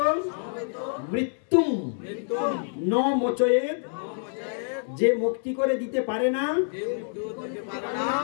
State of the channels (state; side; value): silent; right; digital silence